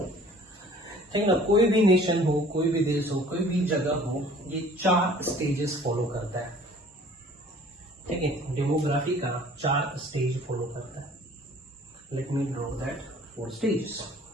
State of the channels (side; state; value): both; normal; correlation 0.51